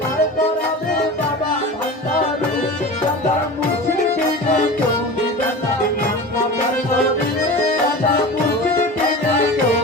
বার করাবে বাবা ভান্ডারি দাদার মুসলিম দিনে কেউ দিবে না জান্নাতের তরি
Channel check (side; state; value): both; normal; correlation 0.32